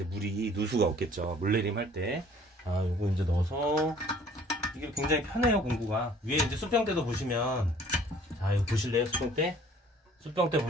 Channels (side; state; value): both; normal; correlation 0.54